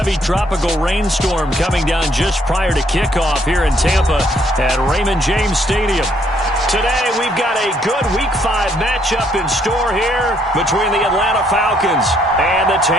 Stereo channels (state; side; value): normal; both; correlation 0.68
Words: tropical rainstorm coming down just prior to kickoff here in Tampa at Raymond James Stadium. Today, we've got a good Week 5 matchup in store here between the Atlanta Falcons and the